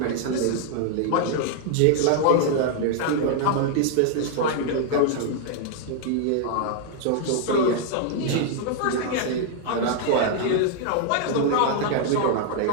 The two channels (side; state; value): both; different; correlation 0.00